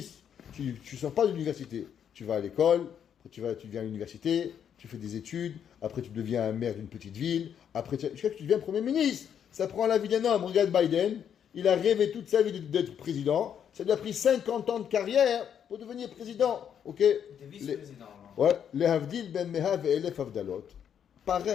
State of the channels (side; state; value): right; quieter; 8.6 dB